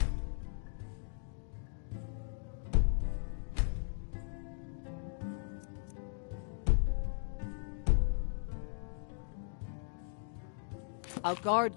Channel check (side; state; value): right; silent; digital silence